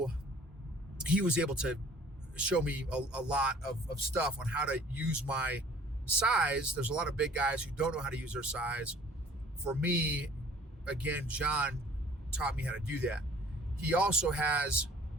he was able to show me a lot of stuff on how to use my size. There's a lot of big guys who don't know how to use their size. For me, again, John taught me how to do that. He also has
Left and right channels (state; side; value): normal; both; correlation 0.51